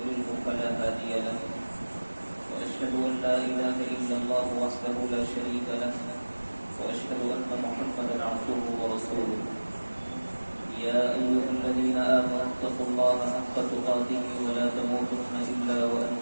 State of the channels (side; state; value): both; inverted; correlation -1.00